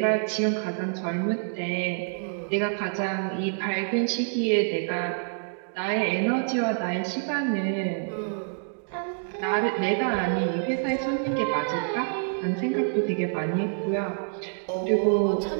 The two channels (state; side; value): silent; left; digital silence